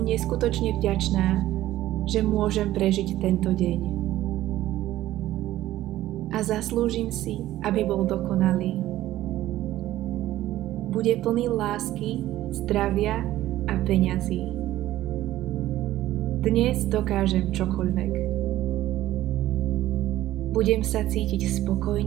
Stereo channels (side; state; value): left; quieter; 14.6 dB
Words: neskutočne vďačná, že môžem prežiť tento deň. A zaslúžim si, aby bol dokonalý. Bude plný lásky, zdravia a peňazí. Dnes dokážem čokoľvek. Budem sa cítiť